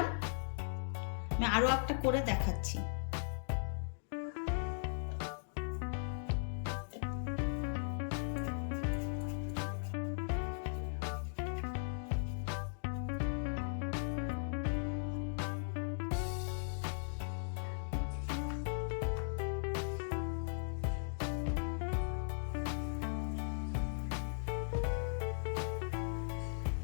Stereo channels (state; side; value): silent; right; digital silence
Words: আমি আরো একটা করে দেখাচ্ছি।